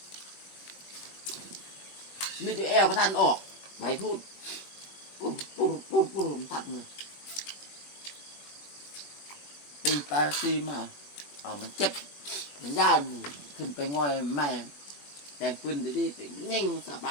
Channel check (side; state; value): right; late; 21 ms